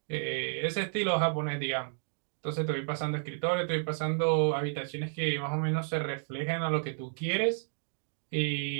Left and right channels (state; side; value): silent; left; digital silence